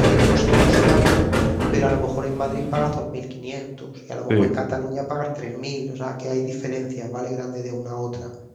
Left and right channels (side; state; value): both; identical; correlation 1.00